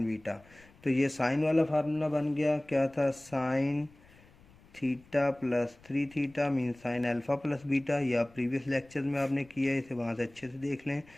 beta. तो ये साइन वाला फार्मूला बन गया, क्या था, sine theta plus 3 theta mean sine alpha plus beta. या प्रीवियस लेक्चर में आपने किया है, इसे वहाँ से अच्छे से देख लें।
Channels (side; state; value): left; noise; rumble, 27 dB below the sound